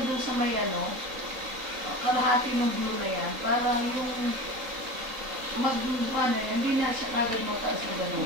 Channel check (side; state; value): left; late; 3.8 ms